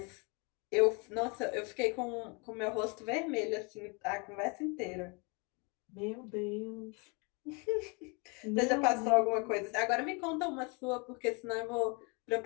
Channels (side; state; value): right; quieter; 31.6 dB